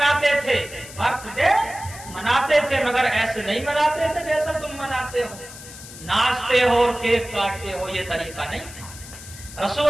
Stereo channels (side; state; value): left; noise; hiss, 15 dB below the sound